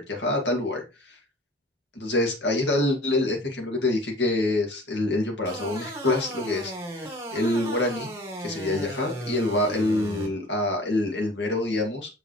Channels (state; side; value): normal; both; correlation 0.45